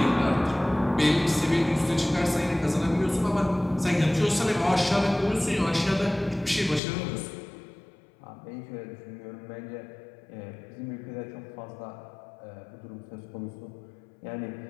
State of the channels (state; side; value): drops out; right; at 6.8 s